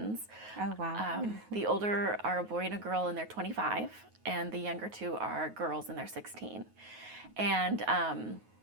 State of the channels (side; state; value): left; late; 9.4 ms